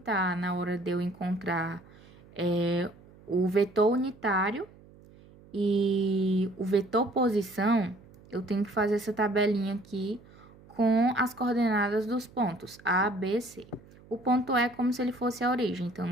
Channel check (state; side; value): noise; right; hum, 24 dB below the sound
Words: na hora de eu encontrar o vetor unitário e o vetor posição, eu tenho que fazer essa tabelinha aqui com as coordenadas dos pontos A, B, C. O ponto é como se ele fosse a origem, então